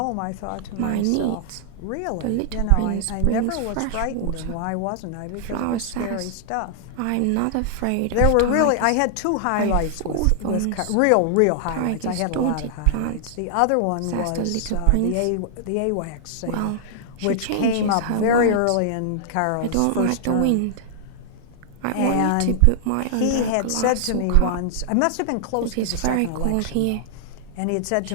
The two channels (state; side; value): different; both; correlation 0.00